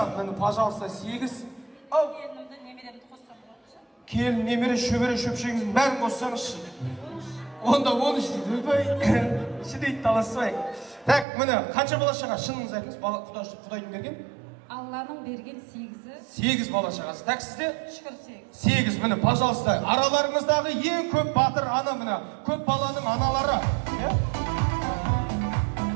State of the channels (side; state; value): left; drops out; at 11.2 s